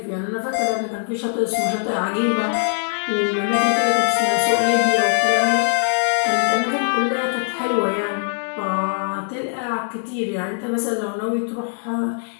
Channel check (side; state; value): right; silent; digital silence